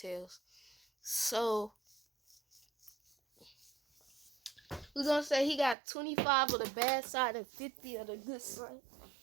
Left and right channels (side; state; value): left; drops out; at 5.8 s